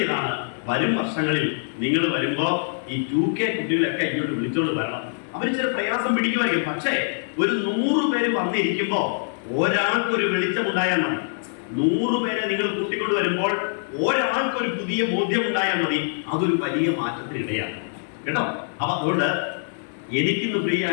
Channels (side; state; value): right; silent; digital silence